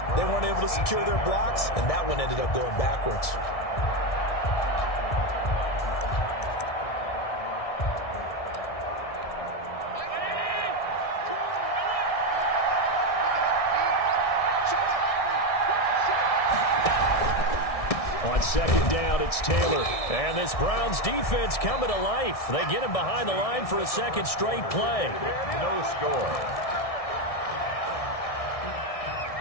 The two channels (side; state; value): right; late; 1.6 ms